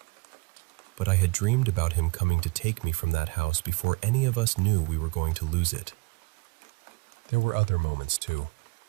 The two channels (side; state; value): left; quieter; 26.3 dB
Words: But I had dreamed about him coming to take me from that house before any of us knew we were going to lose it. There were other moments too.